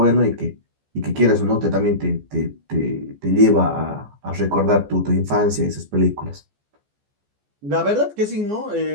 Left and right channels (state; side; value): late; left; 14 ms